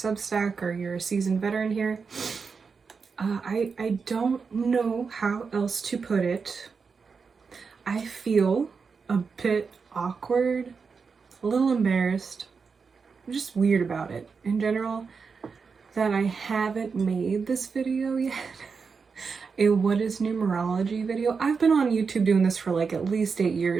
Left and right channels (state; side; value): quieter; left; 5.3 dB